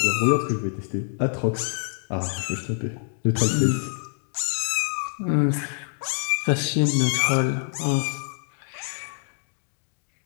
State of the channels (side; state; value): right; silent; digital silence